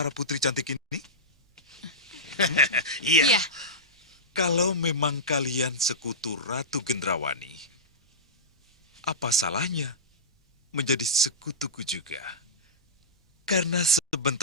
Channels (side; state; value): both; normal; correlation -0.15